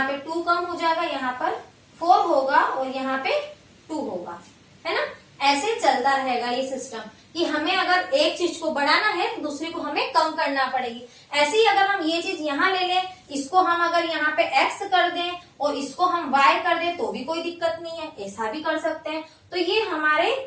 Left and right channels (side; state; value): both; identical; correlation 1.00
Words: पे 2 कम हो जाएगा, यहाँ पर 4 होगा और यहाँ पे 2 होगा, है ना। ऐसे चलता रहेगा ये सिस्टम कि हमें अगर एक चीज को बढ़ाना है तो दूसरी को हमें कम करना पड़ेगी। ऐसे ही अगर हम ये चीज यहाँ ले लें, इसको हम अगर यहाँ पे x कर दें और इसको हम y कर दें तो भी कोई दिक्कत नहीं है, ऐसा भी कर सकते हैं। तो ये